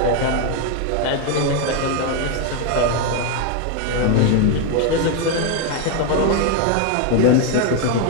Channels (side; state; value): both; different; correlation 0.01